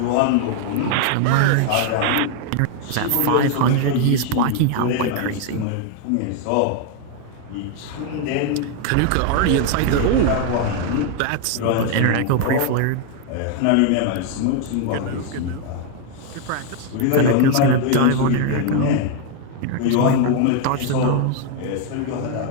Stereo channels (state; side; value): different; both; correlation 0.01